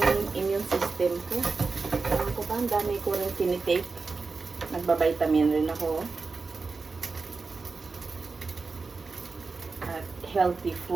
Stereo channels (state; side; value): quieter; left; 4.3 dB